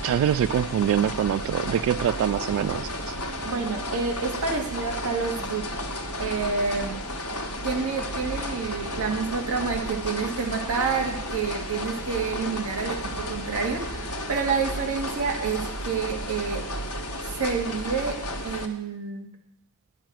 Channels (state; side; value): quieter; left; 4.2 dB